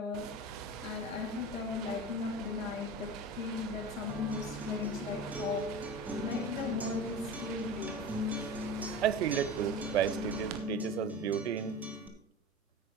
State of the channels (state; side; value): normal; both; correlation 0.32